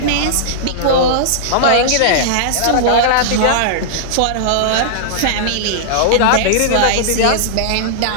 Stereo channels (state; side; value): different; both; correlation -0.02